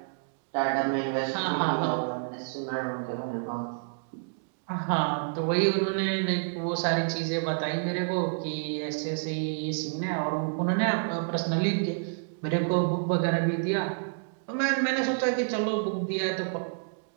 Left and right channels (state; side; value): silent; left; digital silence